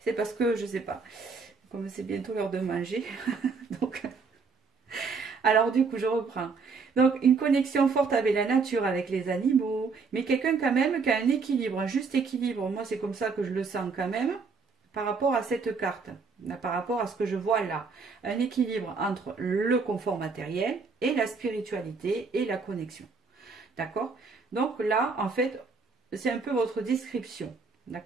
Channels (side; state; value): left; quieter; 4.8 dB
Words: C'est parce que, je sais pas, comme c'est bientôt l'heure de manger. Donc, alors du coup, je reprends. Donc, une connexion forte avec la nature, avec les animaux, mais quelqu'un quand même qui a un équilibre, un juste équilibre. Moi, c'est comme ça que je le sens quand même, par rapport à cette carte, par rapport à ce que je vois là. Un équilibre entre le confort matériel et la spiritualité et la connexion. D'accord? Donc là, en fait, c'est un peu votre description.